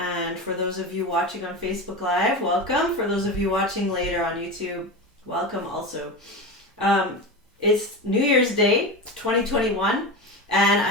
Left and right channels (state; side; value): normal; both; correlation 0.23